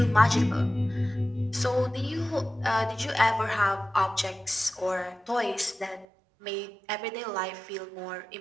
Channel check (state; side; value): drops out; left; at 6.1 s